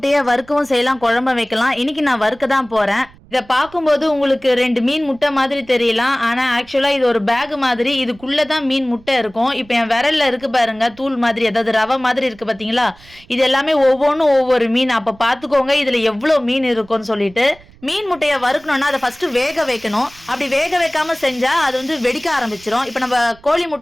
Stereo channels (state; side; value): noise; right; rumble, 25 dB below the sound